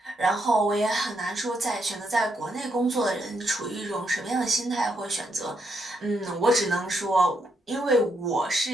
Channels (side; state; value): both; normal; correlation 0.78